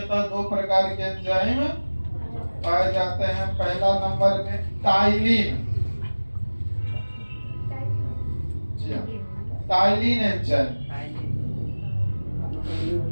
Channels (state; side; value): inverted; both; correlation -1.00